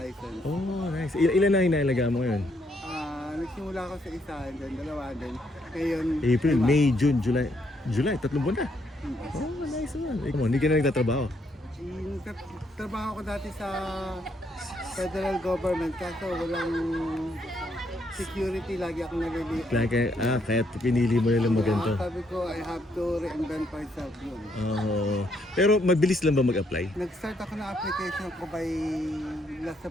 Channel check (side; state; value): both; normal; correlation 0.73